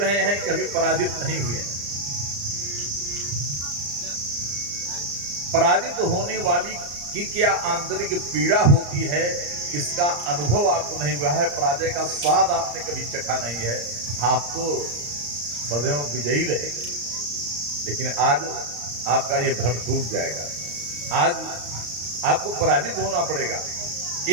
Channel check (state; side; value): late; left; 34 ms